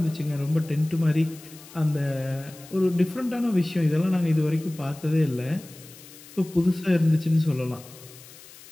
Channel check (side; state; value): left; noise; hiss, 20 dB below the sound